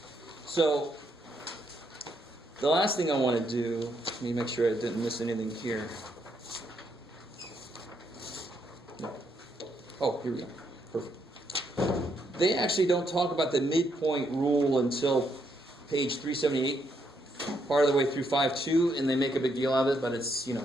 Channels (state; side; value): normal; both; correlation 0.76